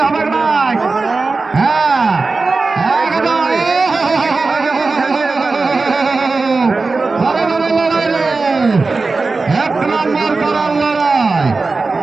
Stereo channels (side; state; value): left; quieter; 3.9 dB